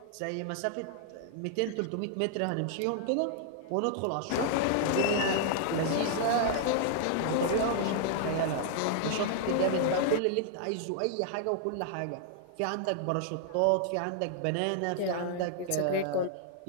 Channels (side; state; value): both; different; correlation -0.01